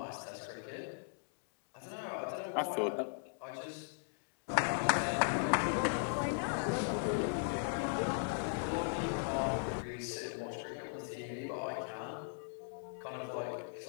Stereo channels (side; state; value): right; silent; digital silence